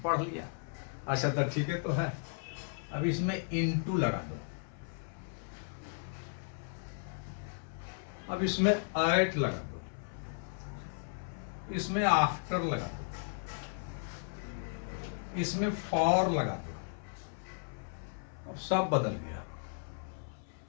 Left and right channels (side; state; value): right; silent; 54 dB below the other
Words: पढ़ लिया, अच्छा तो ठीक है तो है। अब इसमें इनटू लगा दो, अब इसमें एट लगा दो, इसमें आफ्टर लगा दो, इसमें फॉर लगा दो, अब सब बदल गया।